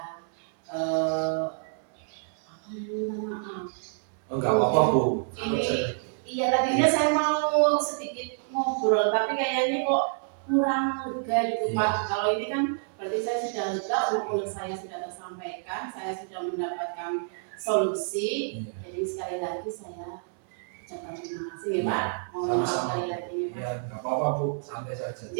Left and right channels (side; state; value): left; silent; 59 dB below the other